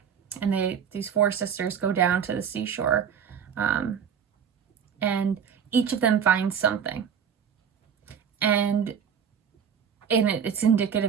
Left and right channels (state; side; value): quieter; left; 7.6 dB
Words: And these 4 sisters go down to the seashore, and each of them finds something. And it's